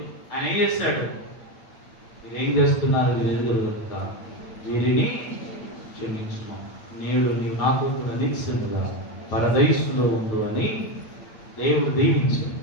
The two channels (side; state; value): right; late; 9.2 ms